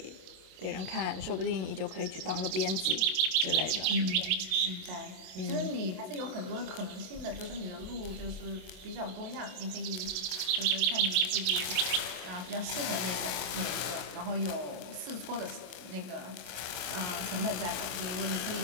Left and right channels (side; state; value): left; late; 27 ms